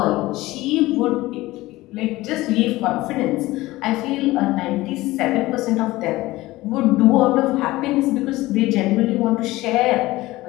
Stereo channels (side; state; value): right; quieter; 18.5 dB